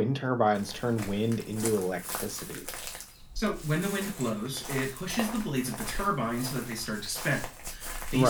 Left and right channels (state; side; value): identical; both; correlation 1.00